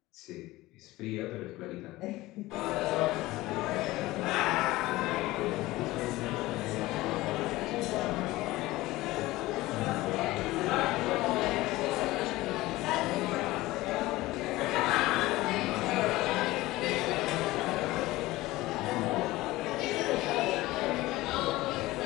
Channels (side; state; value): right; quieter; 18.6 dB